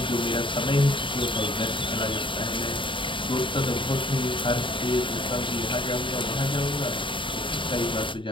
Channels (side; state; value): right; late; 0.24 ms